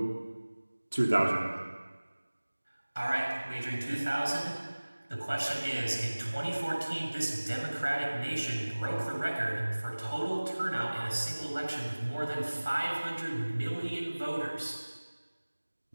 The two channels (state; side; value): inverted; both; correlation -1.00